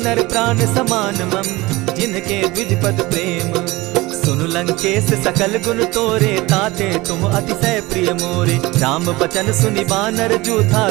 प्राण समान मम, जिनके द्विज पद प्रेम। सुनु लंकेश सकल गुण तोरे, ताते तुम अतिशय प्रिय मोरे। राम बचन सुनि बानर जूथा,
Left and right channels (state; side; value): quieter; left; 21.1 dB